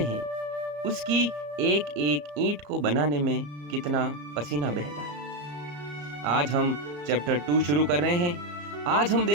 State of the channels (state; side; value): late; left; 34 ms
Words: उसकी एक एक ईंट को बनाने में कितना पसीना बहता है। आज हम चैप्टर 2 शुरू कर रहे हैं। आज हम